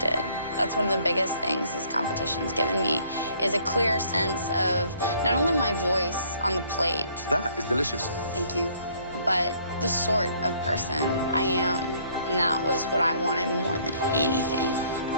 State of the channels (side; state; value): both; inverted; correlation -0.62